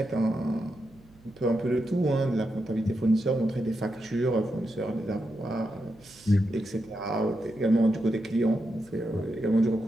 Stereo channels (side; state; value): right; noise; hum, 26 dB below the sound